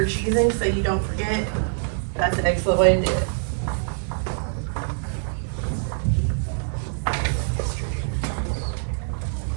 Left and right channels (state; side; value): silent; left; 62 dB below the other